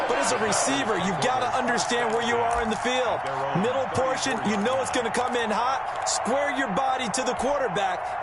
but as a receiver, you've got to understand where you are in the field. Middle portion, you know it's going to come in hot. Square your body to the quarterback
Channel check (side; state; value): both; identical; correlation 1.00